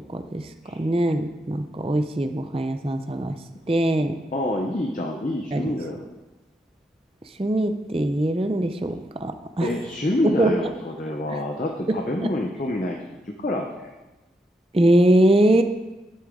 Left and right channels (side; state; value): both; normal; correlation 0.80